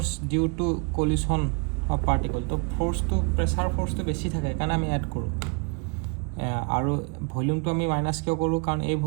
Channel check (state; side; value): quieter; left; 35.3 dB